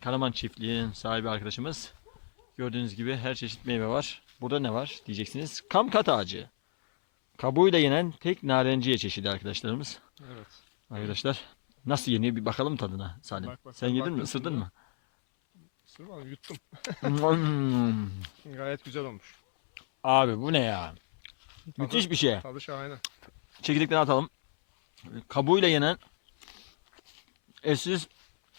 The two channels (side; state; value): right; silent; 58 dB below the other